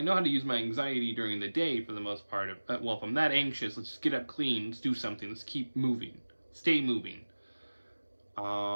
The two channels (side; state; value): both; inverted; correlation -1.00